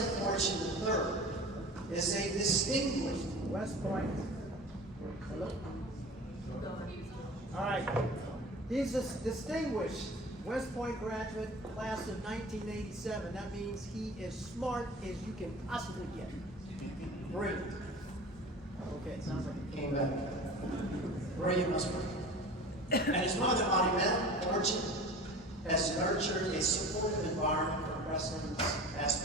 Fortune III, is a distinguished West Point. All right. He's a distinguished West Point graduate, class of 1987. That means he is smart as you can possibly get. Brilliant. Okay, it sounds like he came back. Brilliant must be. And his mother, Auntie Fortune, has nurtured a supportive environment for Preston's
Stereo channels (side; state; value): both; normal; correlation 0.38